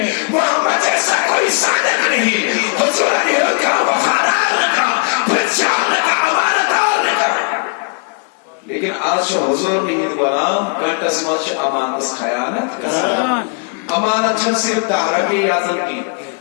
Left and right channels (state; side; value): quieter; right; 36.3 dB